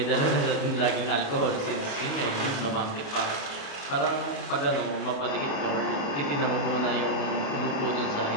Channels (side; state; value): right; late; 28 ms